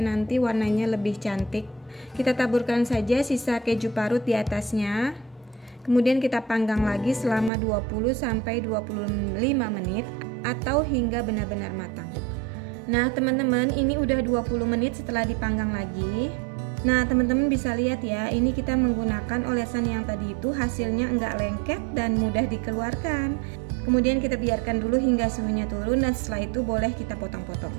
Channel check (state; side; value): drops out; left; at 7.5 s